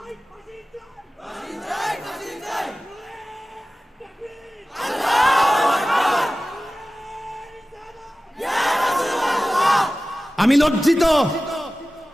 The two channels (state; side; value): normal; both; correlation 0.96